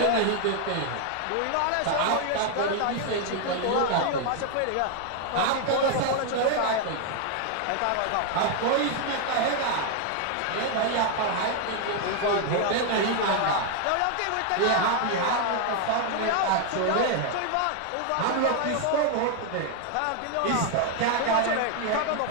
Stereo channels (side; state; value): both; different; correlation 0.00